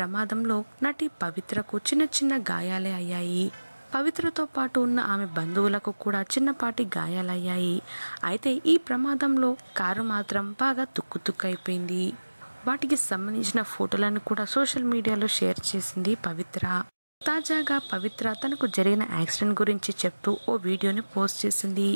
నటి పవిత్రకు చిన్న చిన్న గాయాలే అయ్యాయి. పవిత్రతో పాటు ఉన్న ఆమె బంధువులకు కూడా చిన్నపాటి గాయాలయ్యాయి. అయితే ఈ ప్రమాదంలో కారు మాత్రం బాగా తుక్కుతుక్కైపోయింది. వాటికి సంబంధించిన ఫోటోలను కూడా సోషల్ మీడియాలో షేర్ చేసింది పవిత్ర. తాజాగా పవిత్ర తనకు జరిగిన యాక్సిడెంట్ గురించి చెప్తూ ఓ వీడియోని పోస్ట్ చేసింది.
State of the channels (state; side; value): inverted; both; correlation -1.00